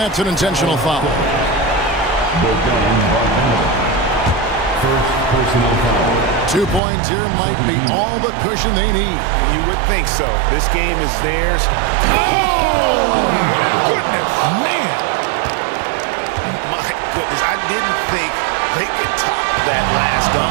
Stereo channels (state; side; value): drops out; left; at 6.8 s